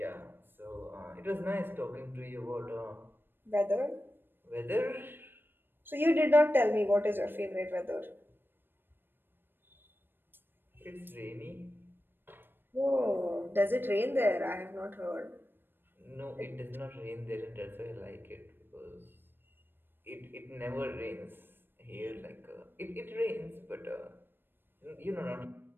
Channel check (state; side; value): late; left; 0.098 ms